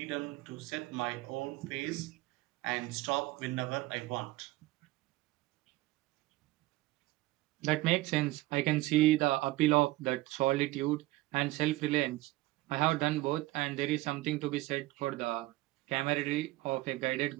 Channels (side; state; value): left; quieter; 18.7 dB